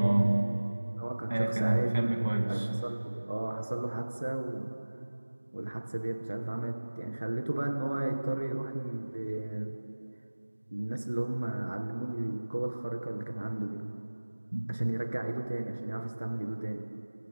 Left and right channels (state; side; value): inverted; both; correlation -1.00